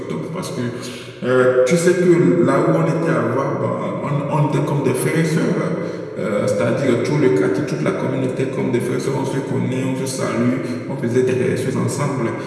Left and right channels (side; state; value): both; identical; correlation 1.00